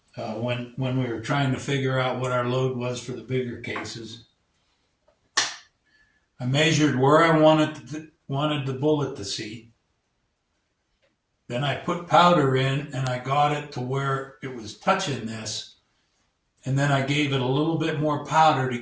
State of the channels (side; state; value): both; identical; correlation 1.00